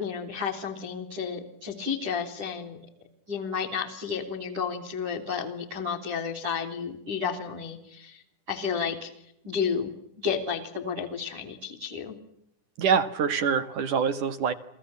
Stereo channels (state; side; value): late; left; 10 ms